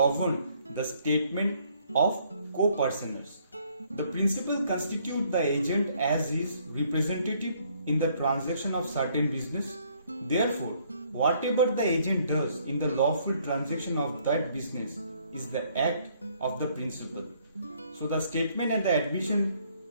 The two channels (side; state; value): both; inverted; correlation -0.65